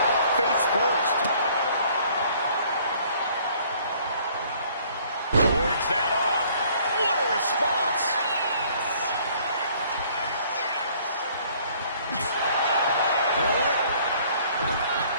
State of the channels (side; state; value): both; inverted; correlation -0.58